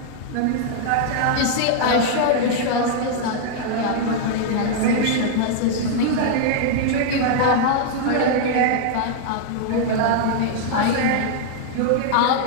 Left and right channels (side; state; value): both; different; correlation -0.01